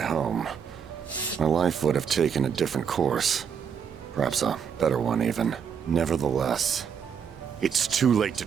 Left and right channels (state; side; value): quieter; left; 7.2 dB